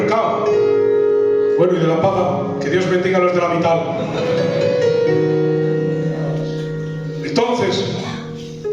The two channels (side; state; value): both; identical; correlation 1.00